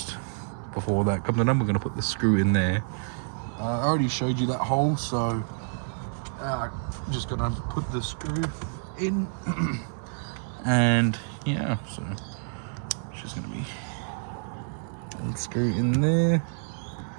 before that comes undone, we're going to put the screw in there. I already showed you that hole, so I'm just going to put the screw in and yeah, so it's just going to be a screw in there,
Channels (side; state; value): left; silent; 59 dB below the other